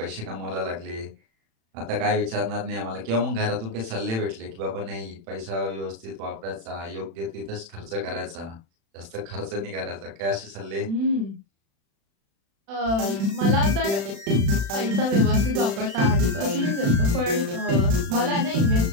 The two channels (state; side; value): late; left; 36 ms